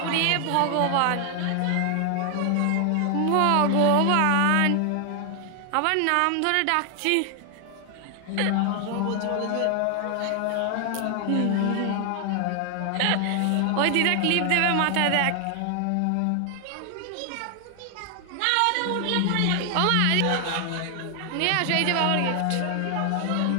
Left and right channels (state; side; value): different; both; correlation 0.00